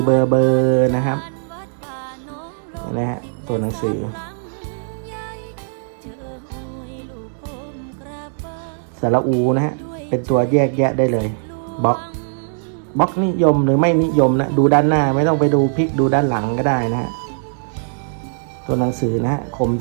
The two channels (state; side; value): silent; left; digital silence